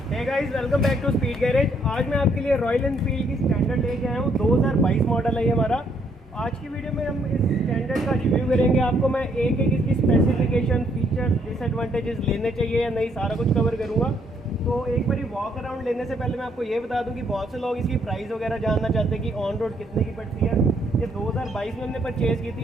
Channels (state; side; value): normal; both; correlation 0.70